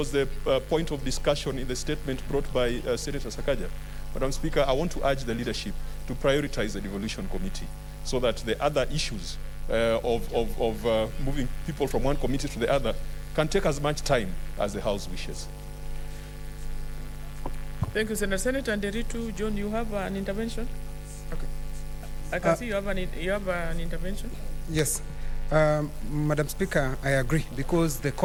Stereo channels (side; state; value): both; identical; correlation 1.00